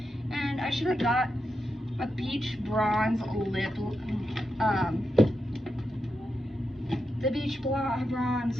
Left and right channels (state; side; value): normal; both; correlation 0.87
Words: and I should have got a Beach Bronze lip, the Beach Bronze